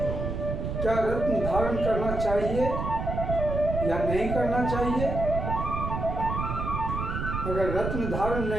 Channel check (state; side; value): noise; right; rumble, 3 dB below the sound